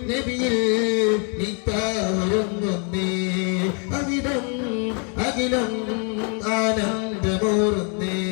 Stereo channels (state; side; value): quieter; right; 38.7 dB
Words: നബിയിൽ നിത്താവരുന്നേ അവിടം അഖിലം ആനന്ദമൂറുന്നേ